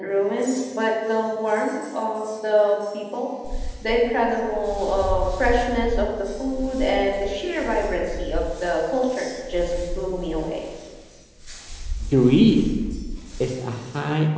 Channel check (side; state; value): both; identical; correlation 1.00